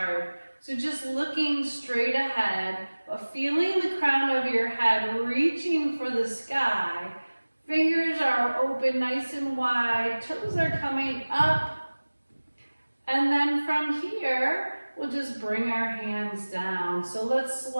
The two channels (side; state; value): both; inverted; correlation -1.00